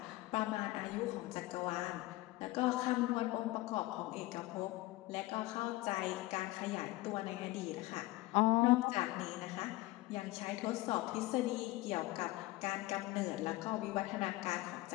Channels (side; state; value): right; quieter; 19.3 dB